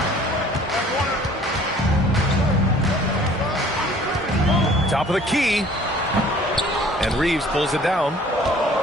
Top of the key. And Reeves pulls it down.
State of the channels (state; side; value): normal; both; correlation 0.53